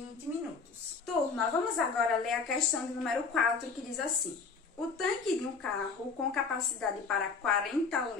minutos. Turma, vamos agora ler a questão de número 4, que diz assim: o tanque de um carro com capacidade para 40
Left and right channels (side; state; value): right; quieter; 4.9 dB